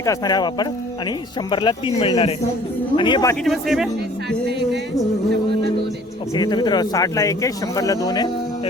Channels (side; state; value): both; normal; correlation 0.52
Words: असणार आहे हा पापड. आणि 100ला 3 मिळणार आहे. आणि हे बाकीचे पण सेम आहे. ओके तर मित्र 60ला 1 आहे 100ला 2 आहे.